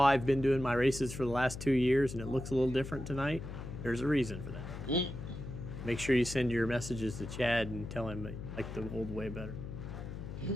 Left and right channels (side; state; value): left; noise; hum, 9 dB below the sound